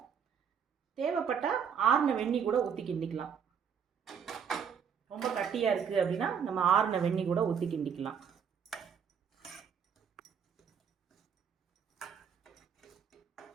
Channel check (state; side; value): quieter; left; 7.3 dB